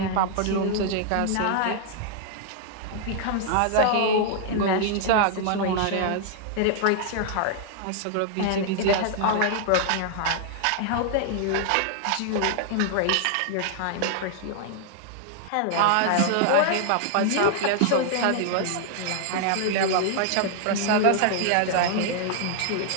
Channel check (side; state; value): both; different; correlation -0.01